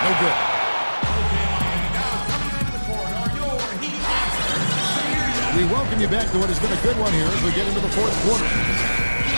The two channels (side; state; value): both; inverted; correlation -1.00